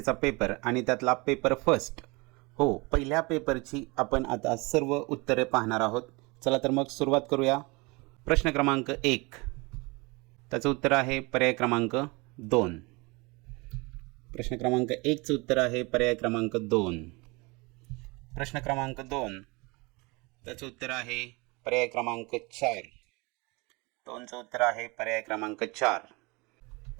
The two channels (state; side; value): quieter; left; 26.5 dB